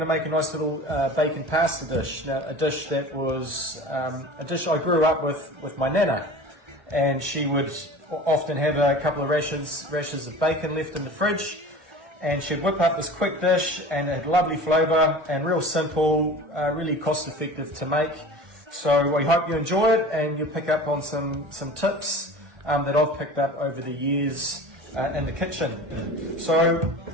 to make a nice little bacon pasta dish. Now, a dish that was a dish I grew up with my nana, and she would often have a couple of rashers of bacon left in the fridge, and she'd whip up this quick dish, and it had lovely flavour and real simple, really cost effective to make. So we hope you enjoy it and you pick up on some tips that I've picked up over the years in the kitchen. So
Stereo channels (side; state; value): left; late; 1.2 ms